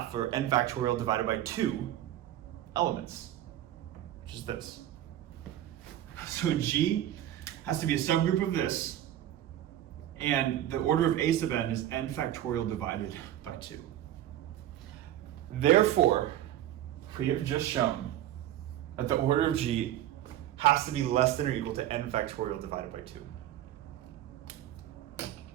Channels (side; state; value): left; quieter; 12.5 dB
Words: or n factorial divided by 2 elements, which is this. So G has to be a subgroup of this, and the order of A sub n is n factorial divided by 2. Therefore, we have just shown that the order of G has to be less than or equal to n factorial divided by 2.